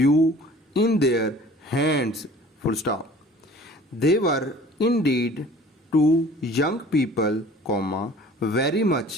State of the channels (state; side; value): normal; both; correlation 0.48